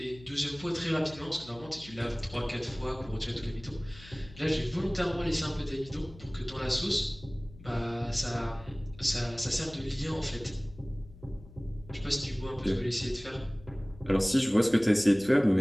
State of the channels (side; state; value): left; noise; hum, 19 dB below the sound